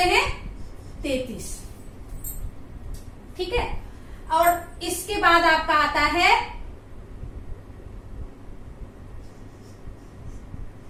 हैं? 33। ठीक है। और इसके बाद आपका आता है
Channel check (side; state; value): both; identical; correlation 1.00